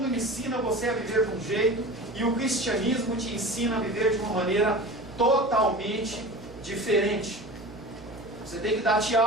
ensina você a viver de um jeito e o cristianismo te ensina a viver de uma maneira totalmente diferente. Você tem que dar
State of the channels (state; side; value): noise; right; hum, 17 dB below the sound